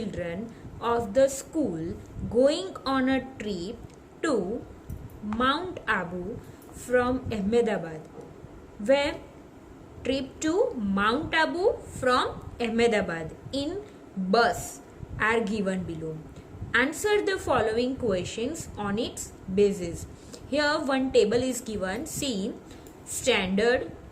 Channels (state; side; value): identical; both; correlation 1.00